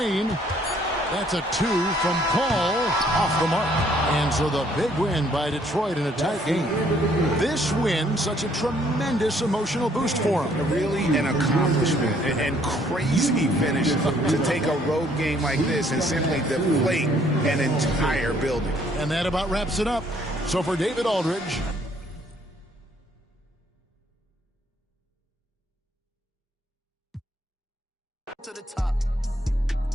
That's a 2 from Paul, off the mark. And so the big win by Detroit in a tight game. This win, such a tremendous emotional boost for them. Really an accomplishment and crazy finish to take a road game like this and simply deflate an entire building. And that about wraps it up. So for David Aldridge. To the top.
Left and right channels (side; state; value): both; normal; correlation 0.64